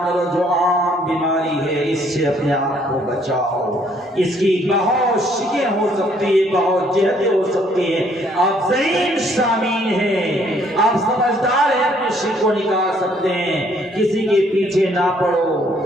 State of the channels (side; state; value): both; normal; correlation 0.64